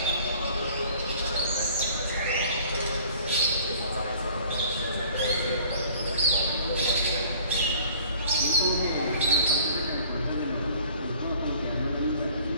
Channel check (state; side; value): inverted; both; correlation -0.51